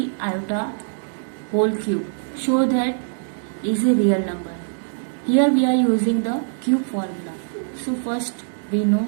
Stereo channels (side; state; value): left; silent; digital silence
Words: iota whole cube. Show that is a real number. Here we are using the cube formula. So first we know